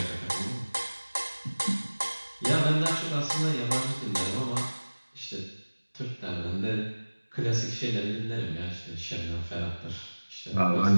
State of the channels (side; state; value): both; inverted; correlation -1.00